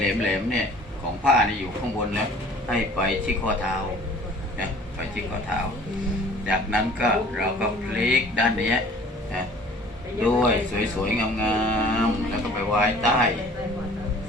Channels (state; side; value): normal; both; correlation 0.50